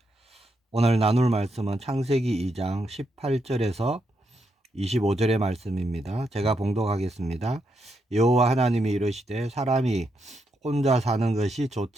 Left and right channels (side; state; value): both; normal; correlation 0.81